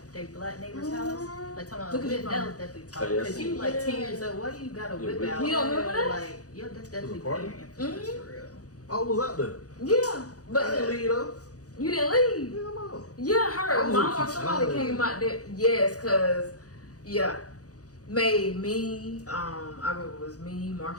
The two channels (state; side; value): late; right; 0.67 ms